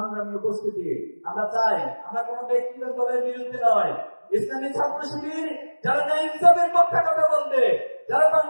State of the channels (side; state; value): both; inverted; correlation -1.00